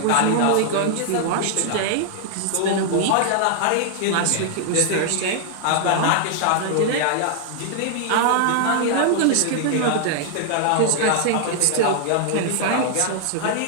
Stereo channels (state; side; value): different; both; correlation -0.01